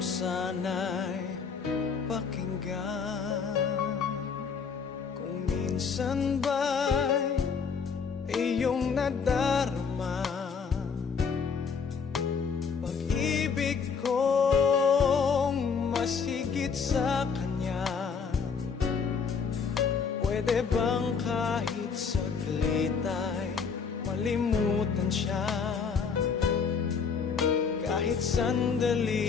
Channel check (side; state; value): right; quieter; 5.9 dB